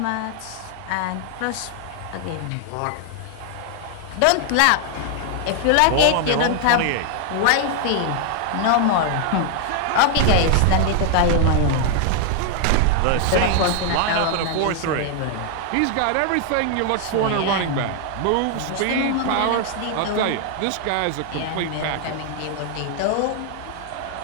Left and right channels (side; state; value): both; different; correlation 0.00